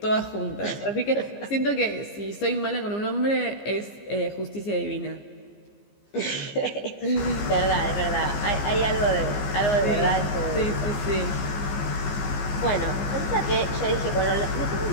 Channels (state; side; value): late; right; 15 ms